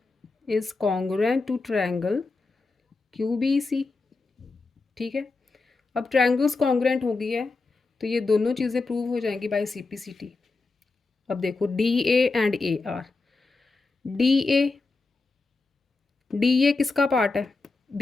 is congruent to triangle Q B C, ठीक है। अब ट्रायंगल्स कॉन्ग्रुएंट हो गई है तो ये दोनों चीज़ें प्रूव हो जाएंगी by C P C T. अब देखो D A and A R, D A किसका पार्ट है,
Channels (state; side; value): quieter; right; 3.7 dB